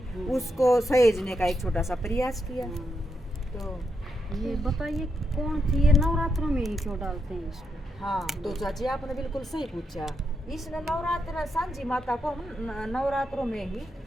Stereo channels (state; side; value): normal; both; correlation 0.81